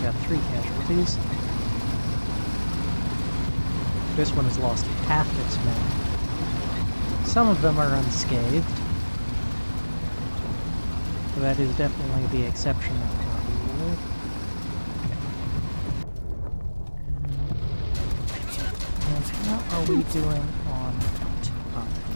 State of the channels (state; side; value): inverted; both; correlation -1.00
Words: got 3 casualties. This one has lost half its men. Some of them are unscathed. So that is definitely the exception of the rule. And how are we doing on time?